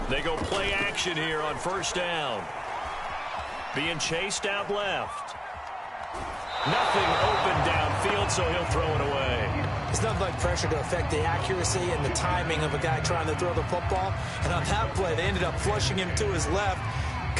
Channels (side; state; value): both; identical; correlation 1.00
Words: They go play action here on first down. Being chased out left. Nothing open downfield, so he'll throw it away. It's nothing like pressure to affect the accuracy and the timing of a guy trying to throw the football. And on that play, they ended up flushing him to his left,